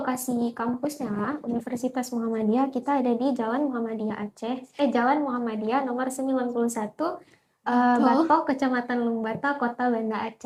kampusnya, Universitas Muhammadiyah, kita ada di Jalan Muhammadiyah Aceh, Jalan Muhammadiyah nomor 91, Batok, Kecamatan Lumbata, Kota Banda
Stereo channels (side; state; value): both; identical; correlation 1.00